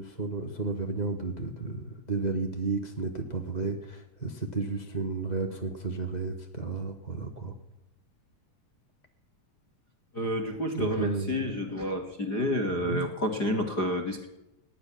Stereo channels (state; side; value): late; right; 4.9 ms